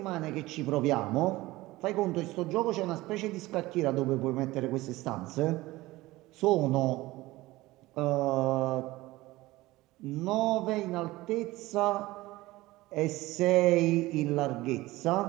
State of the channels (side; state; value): left; quieter; 18.9 dB